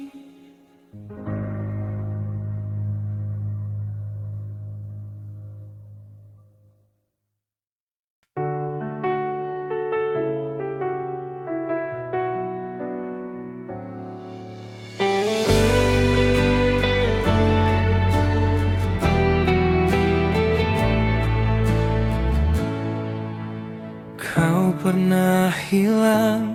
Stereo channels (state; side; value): identical; both; correlation 1.00